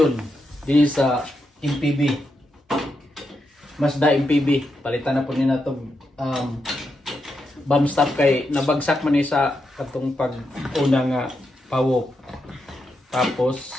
din sa MPB. Mazda MPB. Palitan na po nila itong bomb stop kay nabagsak man sa katong pag-una nga pawok. Tapos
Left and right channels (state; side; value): normal; both; correlation 0.84